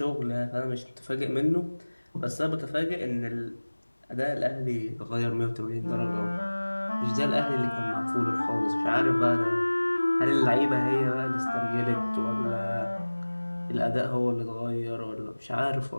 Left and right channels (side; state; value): both; inverted; correlation -1.00